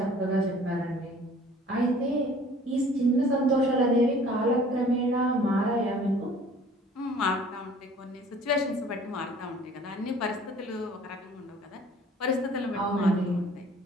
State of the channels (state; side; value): normal; both; correlation 0.51